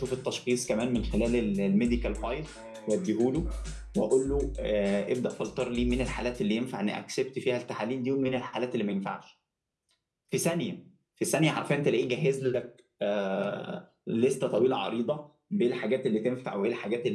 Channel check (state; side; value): identical; both; correlation 1.00